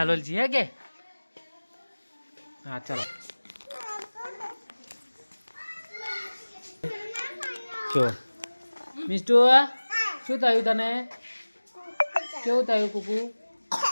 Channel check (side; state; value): both; inverted; correlation -1.00